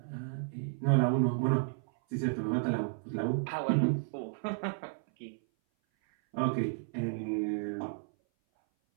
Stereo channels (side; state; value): left; silent; 56 dB below the other